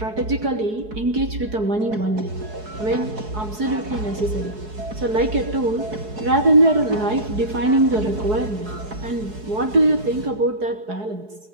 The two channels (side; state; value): left; late; 4.7 ms